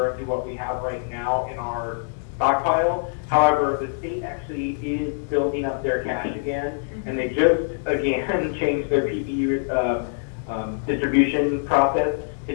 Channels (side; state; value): right; silent; digital silence